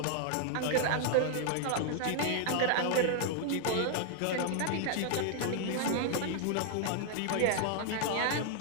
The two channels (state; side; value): different; both; correlation 0.00